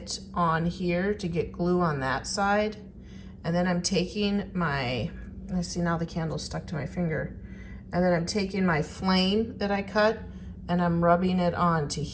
on here to get glue on that side. And then I'm taking my, I see now the candle's stuck to my finger. And then I'm taking my flame that I cut and I'm rubbing it onto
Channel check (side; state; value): both; identical; correlation 1.00